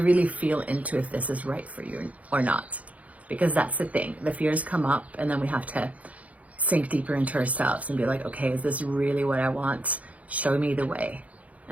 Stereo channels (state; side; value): late; left; 0.069 ms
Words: really feel into if this is right for you or not. Because that's the thing, the fears come up and then we have to sink deeper into ourselves and be like, okay, is this really what I want? Show me the way.